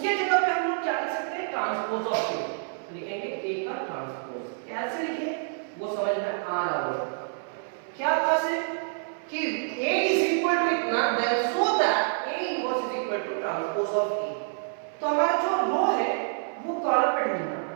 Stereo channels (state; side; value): silent; left; 57 dB below the other